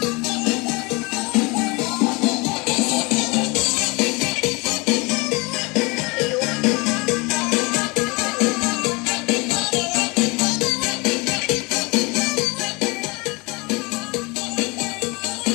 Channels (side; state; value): right; quieter; 26.9 dB